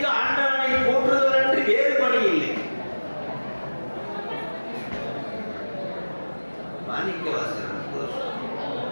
ஆண்டவனை போற்றுதல் என்று வேறு பணி இல்லை. மாணிக்க வாசகன்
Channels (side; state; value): both; inverted; correlation -1.00